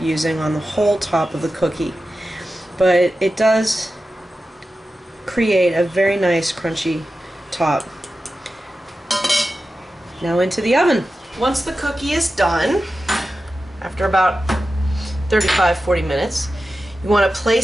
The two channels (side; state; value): both; normal; correlation 0.93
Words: on the whole top of the cookie, but it does create a very nice crunchy top. Now into the oven. Once the cookie is done, after about 35-40 minutes, you want to